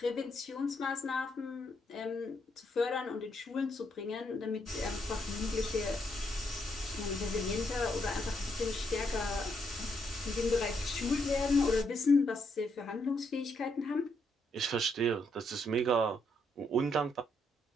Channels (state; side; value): normal; both; correlation 0.76